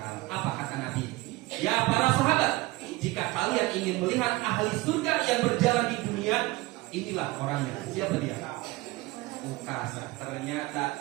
Apa kata Nabi? Ya para sahabat, jika kalian ingin melihat ahli surga yang berjalan di dunia, inilah orangnya. Siapa dia? Ukasa. Ternyata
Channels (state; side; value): quieter; left; 20.6 dB